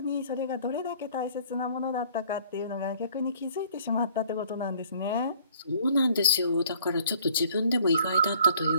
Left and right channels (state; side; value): inverted; both; correlation -0.57